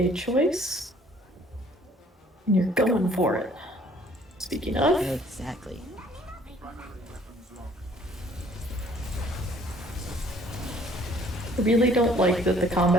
choice, and you're going for it. Speaking of, Exactly. I really don't like that the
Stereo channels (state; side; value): normal; both; correlation 0.58